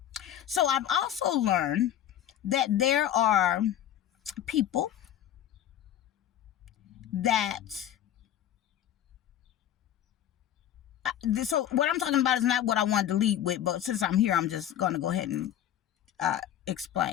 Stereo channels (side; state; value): right; quieter; 11.1 dB